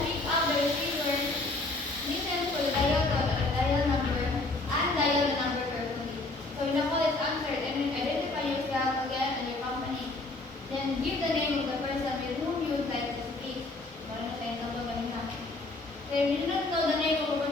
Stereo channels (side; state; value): right; quieter; 3.1 dB